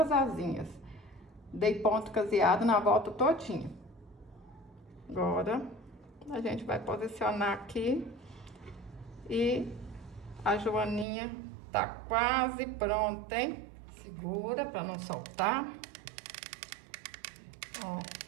asinhas. Dei ponto caseado na volta todinha. Agora, a gente vai posicionar aqui. E a joaninha tá quase pronta, hein? Segura pra não soltar. Ó,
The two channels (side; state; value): left; drops out; at 11.1 s